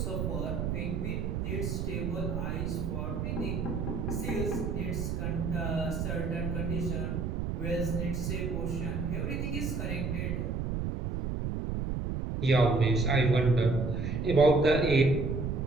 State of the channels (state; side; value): noise; right; rumble, 2 dB below the sound